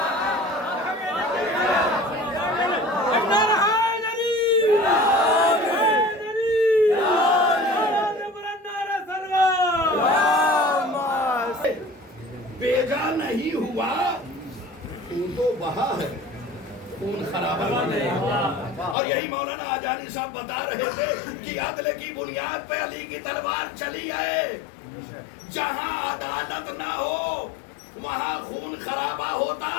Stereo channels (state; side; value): drops out; right; at 18.9 s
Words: بیجا نہیں ہوا, خون تو بہا ہے, خون خرابہ نہیں. اور یہی مولانا آجانی صاحب بتا رہے تھے کہ عدل کی بنیاد پہ علی کی تلوار چلی ہے. جہاں عدالت نہ ہو وہاں خون خرابہ ہوتا